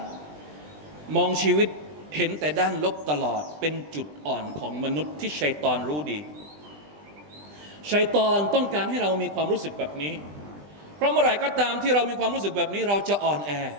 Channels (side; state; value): left; late; 20 ms